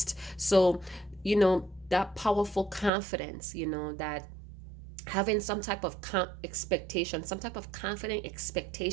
So, you know, that powerful confidence, you know, that having some type of expectation, some type of confident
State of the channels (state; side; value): drops out; left; at 2.9 s